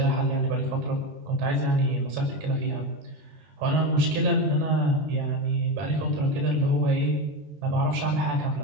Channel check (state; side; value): late; left; 20 ms